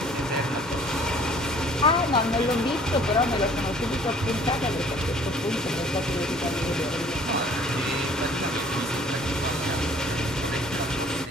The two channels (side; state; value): both; normal; correlation 0.54